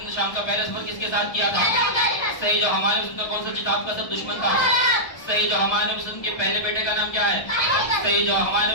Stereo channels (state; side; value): late; right; 1.6 ms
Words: ने शाम का पहला सफर किसके साथ किया था? सही जवाब। हमारे रसूल का कौन सा किताब का सब दुश्मन था? सही जवाब। हमारे नबी वसल्लम के पहले बेटे का नाम क्या है? सही जवाब। हमारे